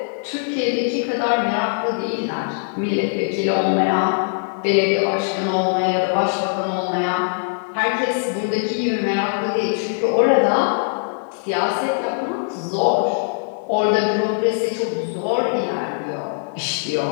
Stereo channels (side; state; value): right; silent; 61 dB below the other